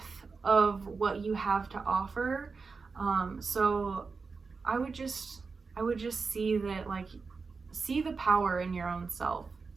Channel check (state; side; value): quieter; left; 4.6 dB